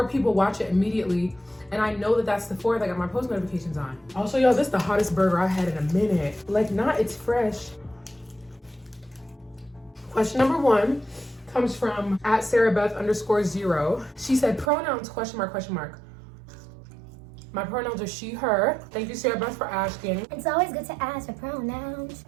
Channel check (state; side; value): drops out; left; at 14.7 s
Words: people watch it immediately. And I know that that's the 4th. I got my post notifications on. Also, y'all, this is the hottest burger I had in a minute. Like, not it's fresh. Question number 1 comes from @SarahBeth_0. She said, pronouns, question mark. My pronouns are she, her. Thank you, Sarah Beth, for asking. It's always good to ask for pronouns.